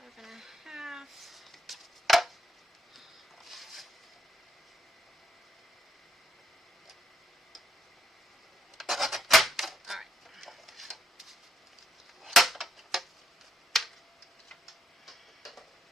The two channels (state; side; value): normal; both; correlation 0.76